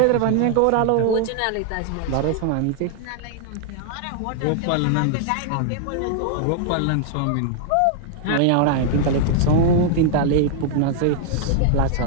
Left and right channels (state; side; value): different; both; correlation 0.00